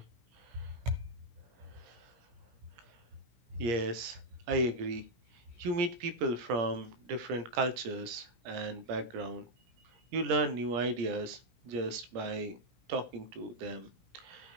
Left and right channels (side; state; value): left; late; 17 ms